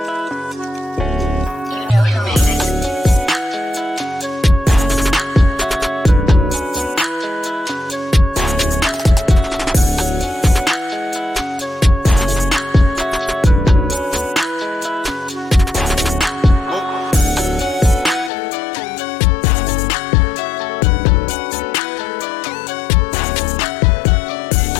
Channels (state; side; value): drops out; right; at 18.3 s